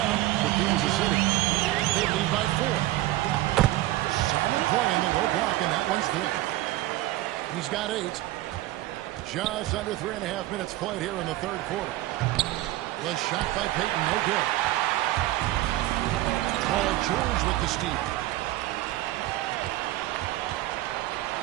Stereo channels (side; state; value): left; quieter; 16.5 dB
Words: up for Kansas City. They lead by 4. Solid play in the low block, and that one's good. He's got 8. Just under 3.5 minutes played here in the third quarter. The shot by Payton, no good. Paul George with the steal.